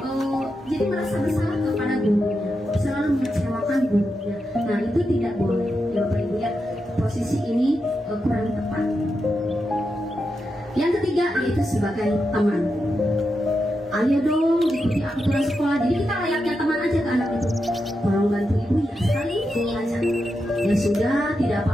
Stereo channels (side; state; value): both; normal; correlation 0.87